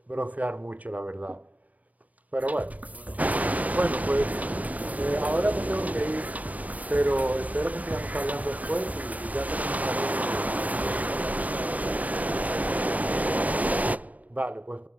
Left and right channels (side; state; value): left; late; 0.073 ms